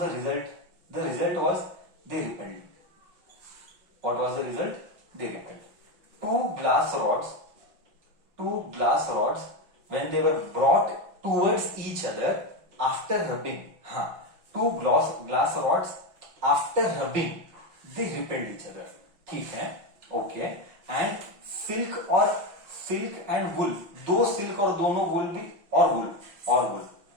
the result? The result was they repelled. What was the result? They repelled. Two glass rods when they were brought towards each other after rubbing, two glass rods after rubbing they repelled each other. ठीक है, okay. And silk and वुल, दो silk और दोनों वुल भी, और वुल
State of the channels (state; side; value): late; left; 5.7 ms